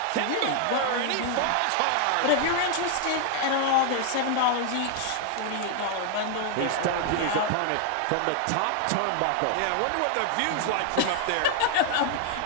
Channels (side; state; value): both; different; correlation 0.00